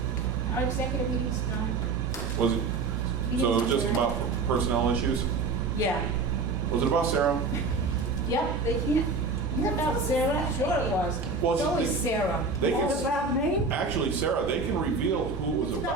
Our executive meeting's done. Was it, so it was just about personnel issues? Yeah. Was it about Sarah? Yep, they can't. What about Sarah? Sure it was. Well, It's always Sarah. They can, What about me? actually, Sarah, they can reveal who it was It's about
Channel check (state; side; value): quieter; left; 4.2 dB